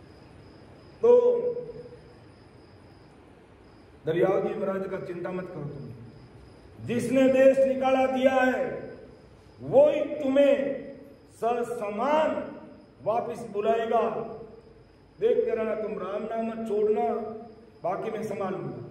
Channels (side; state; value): both; identical; correlation 1.00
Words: तो दरियाव जी महाराज का चिंता मत करो, तुम जिसने देश निकाला दिया है वो ही तुम्हें ससमान वापिस बुलाएगा। देखते रहना, तुम राम नाम मत छोड़ना, बाकी मैं संभाल लूंगा।